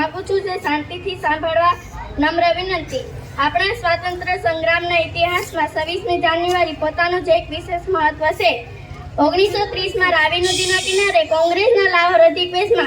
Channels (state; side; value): identical; both; correlation 1.00